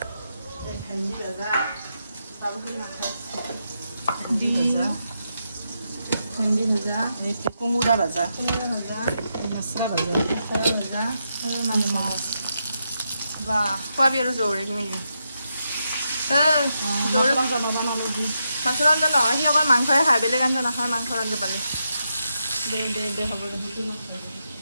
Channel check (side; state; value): both; inverted; correlation -0.84